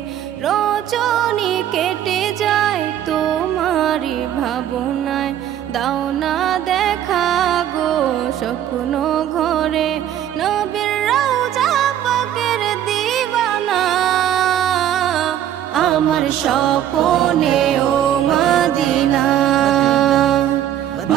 রজনী কেটে যায় তোমার ভাবনায় দাও না দেখা গো স্বপ্ন ঘরে নবীর রওজা পাকের দিওয়ানা আমার স্বপ্নে ও Medina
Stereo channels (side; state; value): left; quieter; 11.0 dB